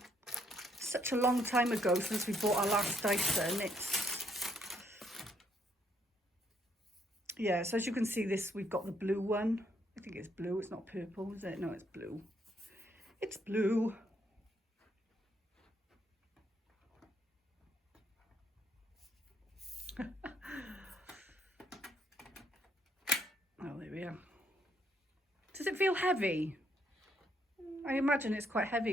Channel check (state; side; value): normal; both; correlation 0.71